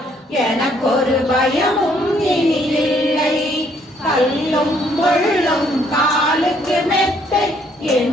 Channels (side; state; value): both; normal; correlation 0.67